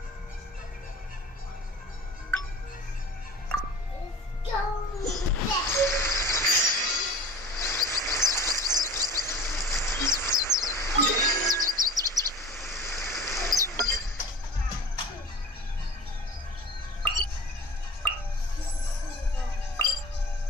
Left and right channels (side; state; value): both; normal; correlation 0.40